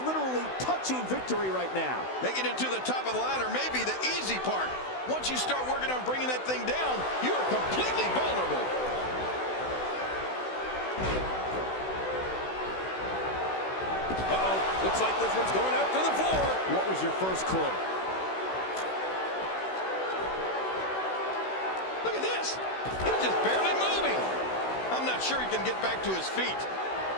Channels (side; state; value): right; late; 16 ms